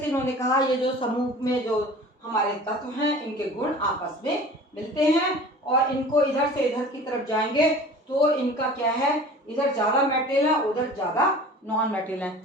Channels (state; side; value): normal; both; correlation 0.42